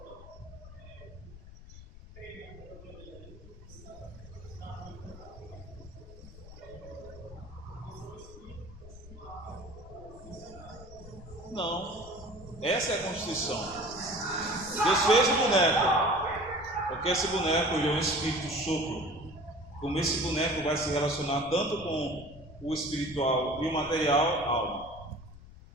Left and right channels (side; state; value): left; noise; rumble, 17 dB below the sound